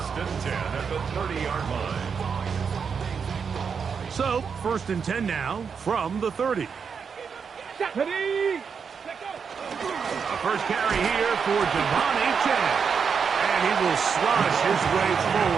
and 10 at the 30-yard line. So, 1st and 10 now from the 30. First carry here for Devontae Chan. And he will slosh his way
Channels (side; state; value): left; quieter; 6.2 dB